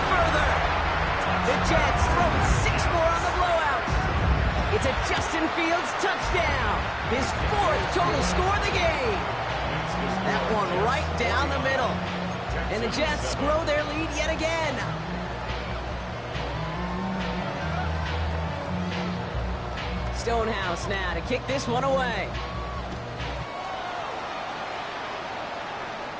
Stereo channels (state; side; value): identical; both; correlation 1.00